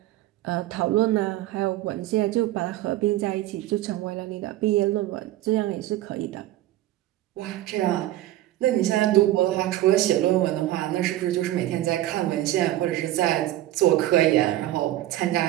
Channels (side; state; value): left; quieter; 14.6 dB